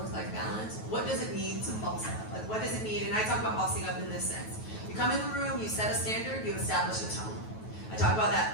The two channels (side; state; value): right; late; 9.2 ms